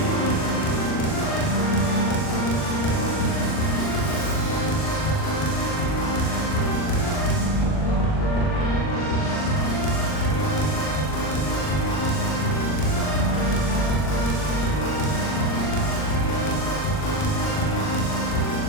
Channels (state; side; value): late; right; 39 ms